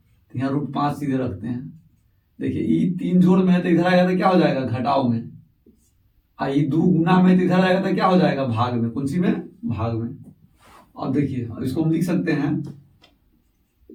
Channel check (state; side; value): identical; both; correlation 1.00